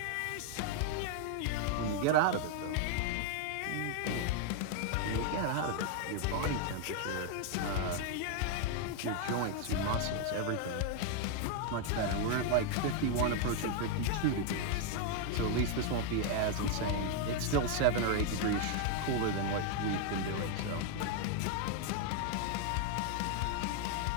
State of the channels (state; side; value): different; both; correlation 0.00